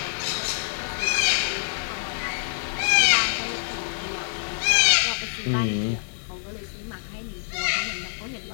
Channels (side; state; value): right; silent; digital silence